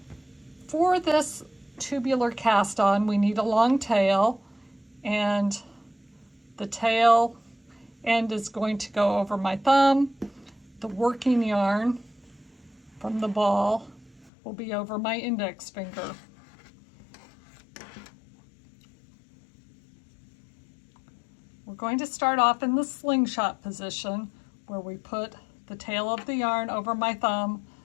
For this tubular cast on, we need a long tail, and the tail end is going to go over my thumb. The working yarn from the ball will be over my index finger. We're going to start off in the slingshot position where we put the tail of the yarn over my thumb,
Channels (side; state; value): right; drops out; at 14.3 s